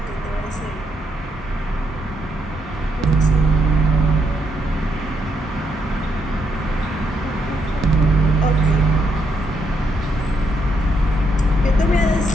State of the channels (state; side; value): normal; both; correlation 0.77